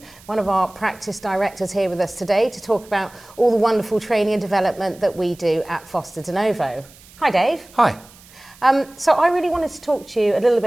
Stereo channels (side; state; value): right; noise; hiss, 24 dB below the sound